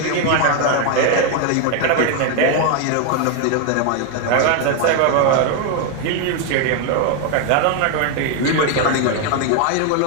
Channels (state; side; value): different; both; correlation 0.01